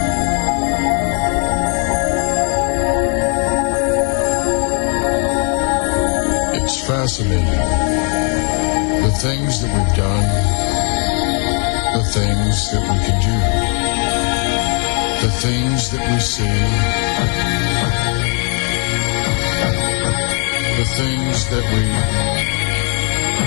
It's fascinating. The things that we've done, the things that we can do, the things that we see, the things that we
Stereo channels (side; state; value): right; quieter; 39.8 dB